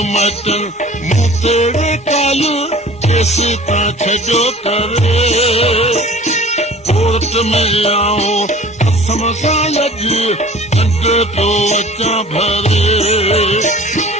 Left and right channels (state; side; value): normal; both; correlation 0.45